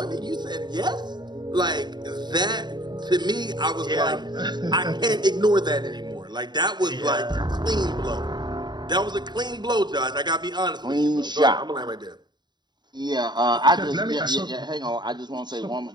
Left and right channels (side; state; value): left; late; 0.21 ms